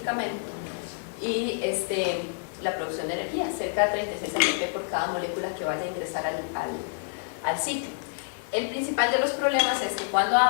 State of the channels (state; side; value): silent; right; 60 dB below the other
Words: y la producción de energía, cerca de 36 ATP por cada molécula que vaya a ingresar al ciclo. El principal de los problemas es que cuando